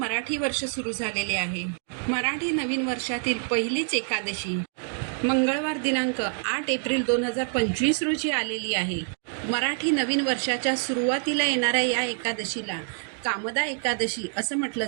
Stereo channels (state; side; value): silent; left; 60 dB below the other